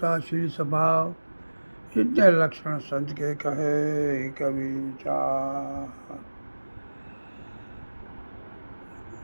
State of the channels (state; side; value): inverted; both; correlation -1.00